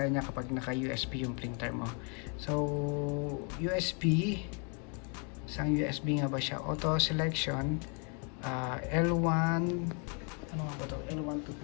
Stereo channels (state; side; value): quieter; right; 37.7 dB